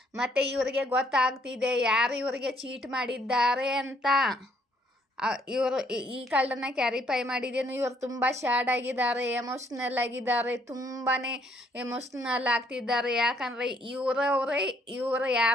ಮತ್ತು ಇವರಿಗೆ ಗೊತ್ತಾಗ್ತಿದೆ ಯಾರು ಇವರಿಗೆ ಚೀಟ್ ಮಾಡಿದ್ದಾರೆ ಅಂತ. ಇವರು ಈ ಕಳ್ಳನ್ನು ಕ್ಯಾರಿಫೈ ಮಾಡಿದ್ದೇನು, ಇವರು ತುಂಬ ಸ್ಯಾಡ್ ಆಗಿದ್ದಾರೆ, ಎಮೋಷ್ನಲ್ ಆಗಿದ್ದಾರೆ, ತುಂಬಾ ಎಮೋಷ್ನಲ್ ಆಗ್ತಿದ್ದಾರೆ. ಯಾಕಂದರೆ ಇವರು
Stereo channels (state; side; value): normal; both; correlation 0.67